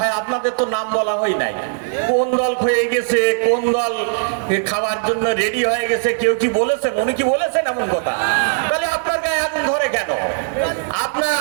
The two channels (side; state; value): left; silent; digital silence